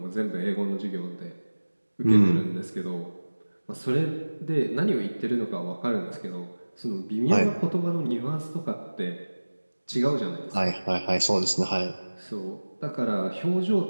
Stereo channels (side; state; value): both; inverted; correlation -1.00